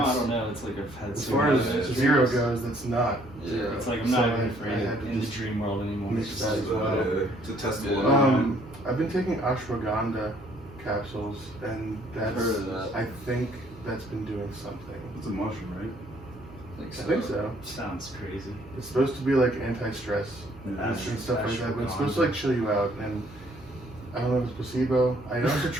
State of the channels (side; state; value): right; noise; hum, 19 dB below the sound